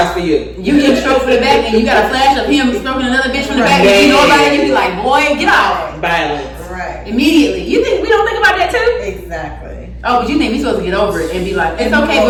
for you. You get stroked for the back and you got a flash of him stroking another bitch from the back and you know about it, you be like, boy, get off. Violence. Right. Immediately. You think we don't think about that too? Exactly. Oh, but you think we supposed to get over it and be like, it's okay,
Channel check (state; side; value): identical; both; correlation 1.00